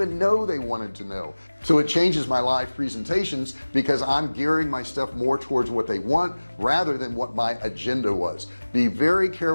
know they wanted to know. So it changes my live presentations because I'm gearing my stuff more towards what they want rather than what my agenda was. Be very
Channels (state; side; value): inverted; both; correlation -1.00